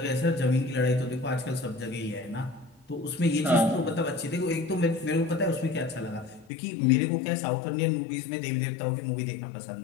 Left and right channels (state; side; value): drops out; right; at 6.5 s